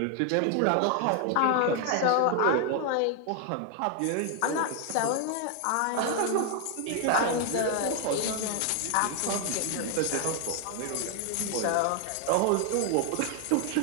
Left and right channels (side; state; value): both; different; correlation 0.00